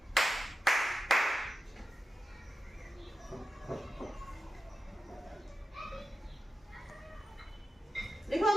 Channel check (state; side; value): normal; both; correlation 0.91